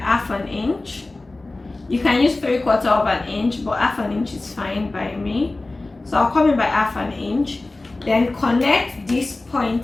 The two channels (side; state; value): right; quieter; 3.1 dB